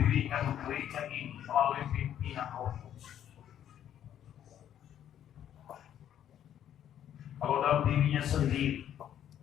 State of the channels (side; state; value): right; quieter; 10.4 dB